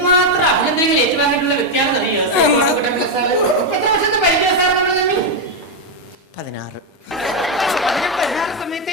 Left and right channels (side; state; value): both; normal; correlation 0.03